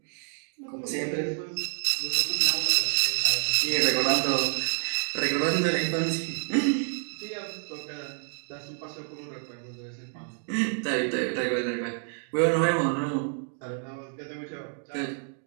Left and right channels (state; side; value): silent; left; 56 dB below the other